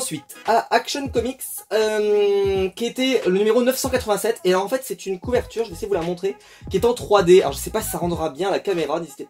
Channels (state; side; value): identical; both; correlation 1.00